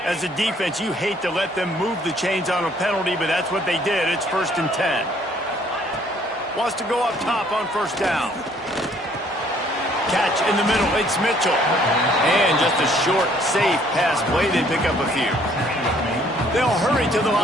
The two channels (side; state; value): both; normal; correlation 0.62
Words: As a defense, you hate to let them move the chains on a penalty, but that's what they did. It's 1st and 10. Wants to go up top on first down. Catch in the middle, it's Mitchell. And just a short, safe pass play, they pick up a few. They'll hurry to the